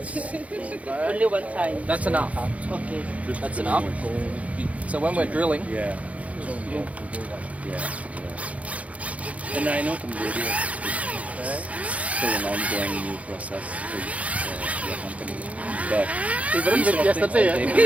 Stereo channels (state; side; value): late; left; 0.066 ms